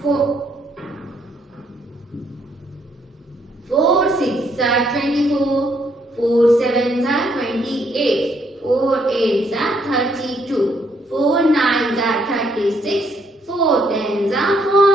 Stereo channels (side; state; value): both; normal; correlation 0.71